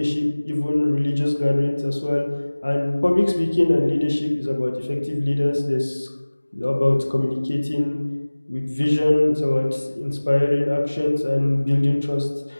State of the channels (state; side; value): inverted; both; correlation -1.00